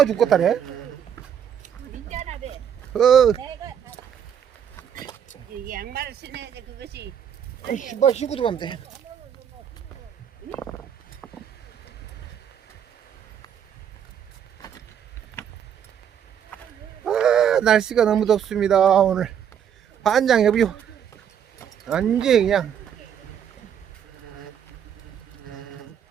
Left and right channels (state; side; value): quieter; left; 8.7 dB